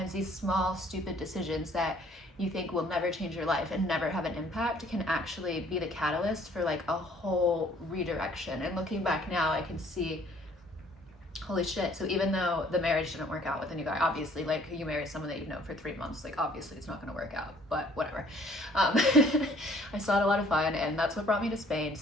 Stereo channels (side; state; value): both; normal; correlation 0.58